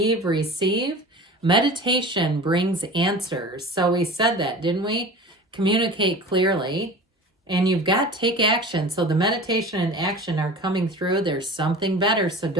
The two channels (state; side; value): normal; both; correlation 0.37